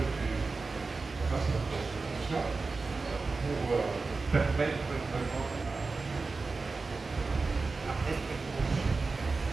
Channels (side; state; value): left; quieter; 4.0 dB